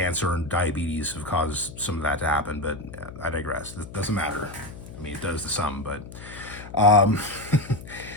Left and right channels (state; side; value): noise; left; hum, 14 dB below the sound